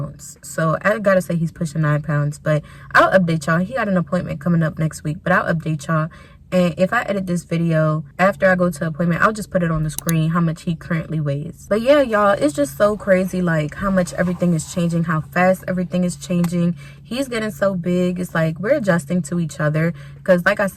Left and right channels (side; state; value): both; identical; correlation 1.00